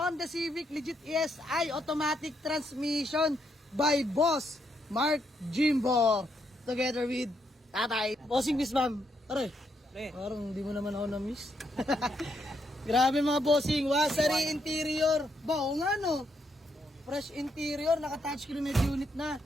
Civic Legit ESI Automatic Transmission by Boss Mark Jimbo. Together with Tatay. Bossing miss ma'am. Aray, parang di mo naman ako na-miss. Grabe mga bossing, wasari interior. Bao nga no? Fresh interior, naka-touchscreen med unit na.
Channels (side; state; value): both; normal; correlation 0.77